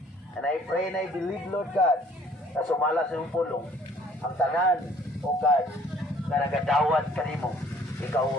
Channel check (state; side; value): normal; both; correlation 0.57